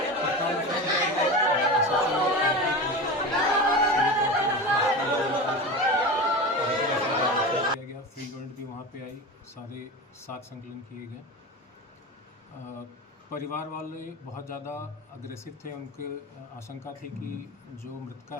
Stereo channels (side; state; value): both; normal; correlation 0.27